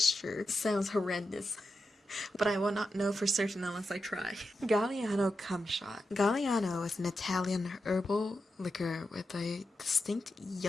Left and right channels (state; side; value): normal; both; correlation 0.89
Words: sounds horrendous. But I will not know for certain unless I try. Galliano cum shot. Galliano is an Italian herbal liquor with a distinct